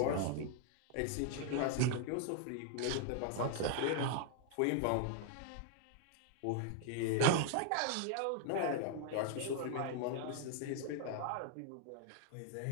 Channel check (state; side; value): different; both; correlation 0.00